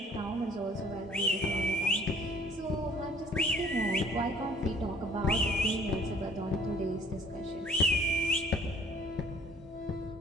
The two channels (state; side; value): normal; both; correlation 0.55